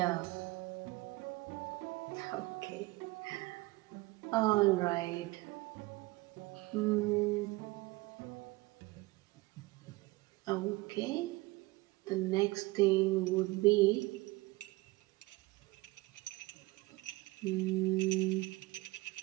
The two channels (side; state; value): left; quieter; 21.9 dB